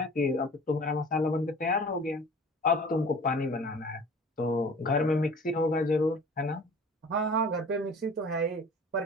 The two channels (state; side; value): normal; both; correlation 0.44